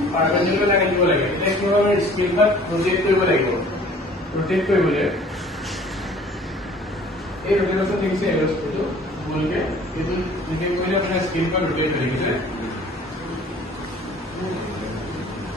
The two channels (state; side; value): normal; both; correlation 0.51